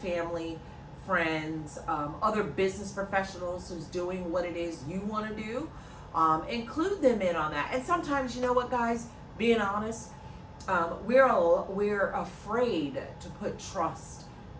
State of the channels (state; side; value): identical; both; correlation 1.00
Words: friends, other business professionals who's doing what it is you want to do. Include them in on that. And sometimes, you know what, guys, being honest, we're afraid to put trust